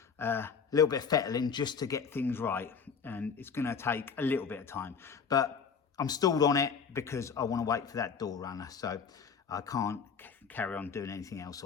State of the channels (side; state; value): right; quieter; 6.2 dB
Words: a little bit of fettling just to get things right, and it's going to take a little bit of time. But I'm stalled on it because I want to wait for that door runner, so I can't carry on doing anything else